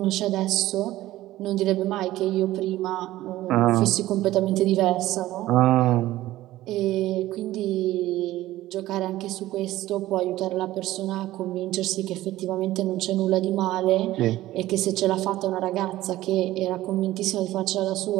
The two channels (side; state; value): left; quieter; 15.7 dB